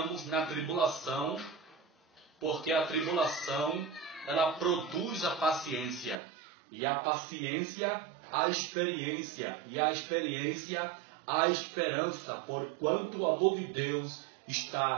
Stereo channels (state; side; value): drops out; left; at 6.2 s